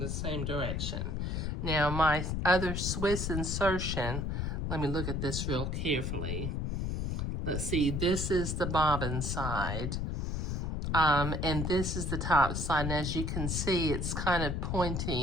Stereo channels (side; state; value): left; noise; rumble, 1 dB below the sound